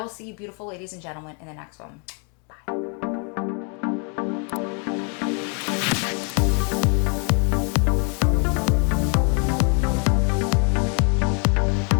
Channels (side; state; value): right; quieter; 36.3 dB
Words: see you beautiful ladies and gentlemen in the next one.